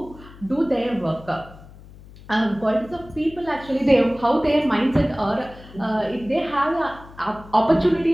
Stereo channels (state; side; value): noise; left; hum, 20 dB below the sound